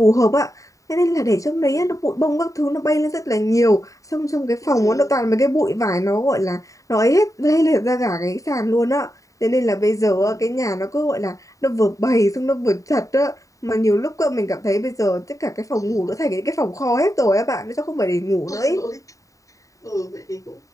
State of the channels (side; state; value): right; late; 0.16 ms